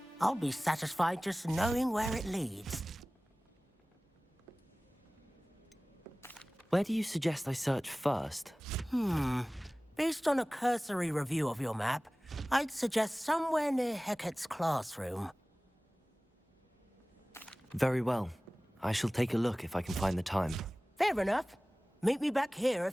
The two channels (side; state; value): both; normal; correlation 0.98